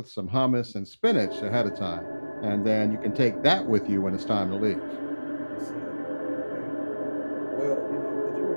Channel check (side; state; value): both; inverted; correlation -1.00